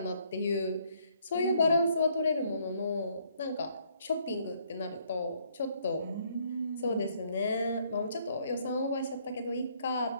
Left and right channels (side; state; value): both; inverted; correlation -0.67